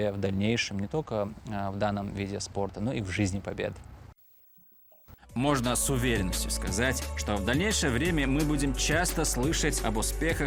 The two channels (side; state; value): both; identical; correlation 1.00